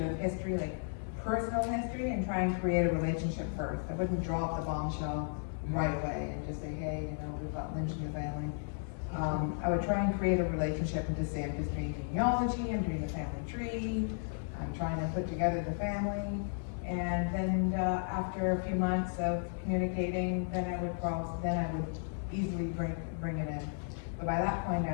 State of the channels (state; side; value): silent; right; digital silence